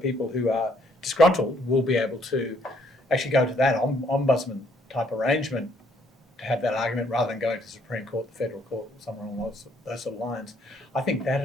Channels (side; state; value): both; normal; correlation 0.67